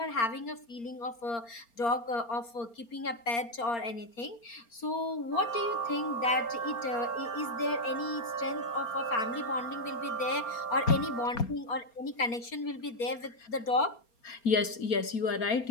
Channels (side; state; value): right; late; 4.3 ms